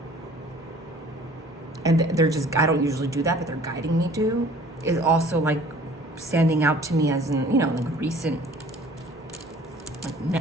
And they're just, I don't usually do that, but they're guiding me to, is also like standing out to me as in, you know, like recent,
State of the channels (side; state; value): both; normal; correlation 0.51